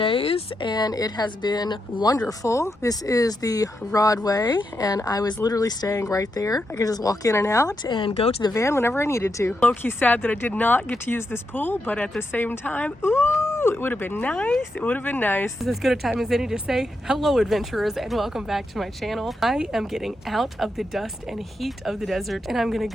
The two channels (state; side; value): normal; both; correlation 0.84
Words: and it has been wonderful. This is the Rodway and I was literally staying right there. I could just walk in and out and go to the van whenever I needed to. Low-key sad that I did not get to use this pool, but at the same time, ooh, it would have been nice. It would have been nice. This is as good a time as any to say hello, adventurers, and welcome back to my channel. I am getting out of the dust and heat of the desert and I'm gonna